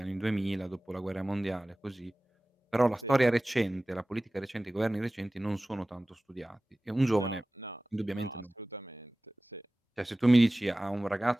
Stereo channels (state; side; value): normal; both; correlation 0.97